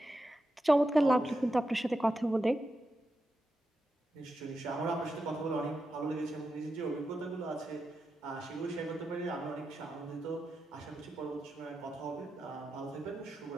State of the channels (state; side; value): normal; both; correlation 0.88